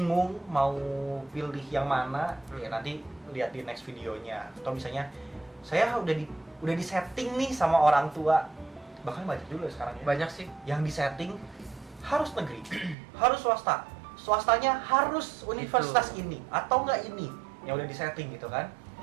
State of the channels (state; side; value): drops out; left; at 13.0 s